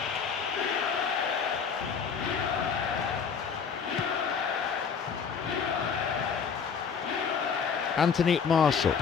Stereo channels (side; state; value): right; quieter; 6.3 dB